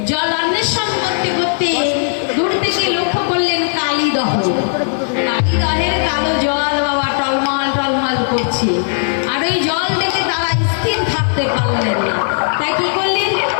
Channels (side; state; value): right; silent; 65 dB below the other